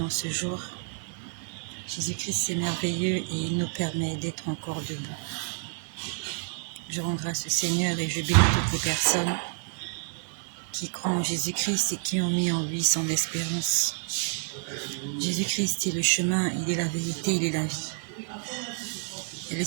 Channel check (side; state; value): left; silent; digital silence